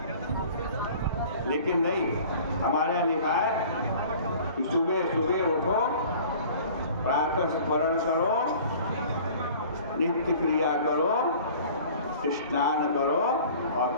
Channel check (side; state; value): both; inverted; correlation -0.47